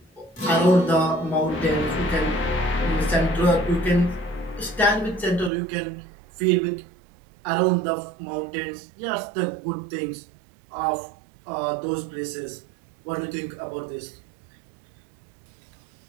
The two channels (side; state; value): left; drops out; at 5.5 s